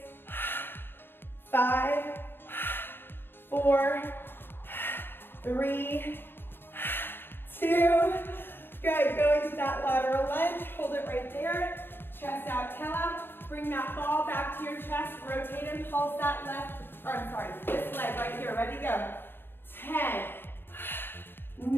5, 4, 3, 2. Good, go into that lateral lunge. Hold it right there. Chest out, tail out. Bring that ball back to your chest. Rotate and pulse that this leg right here. Ready, go. 10,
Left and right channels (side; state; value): right; late; 0.10 ms